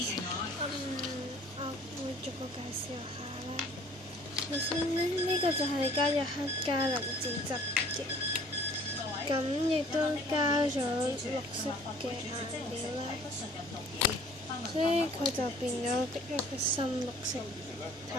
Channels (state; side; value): normal; both; correlation 0.53